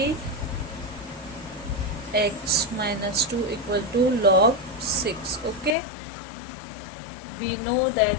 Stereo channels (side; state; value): right; drops out; at 5.8 s